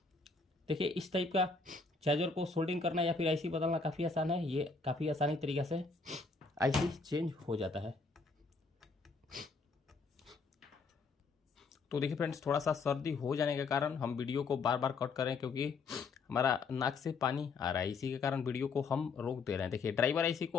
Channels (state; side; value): quieter; right; 4.3 dB